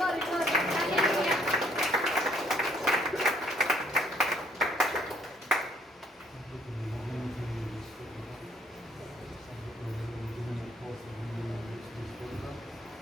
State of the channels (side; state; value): both; normal; correlation 0.64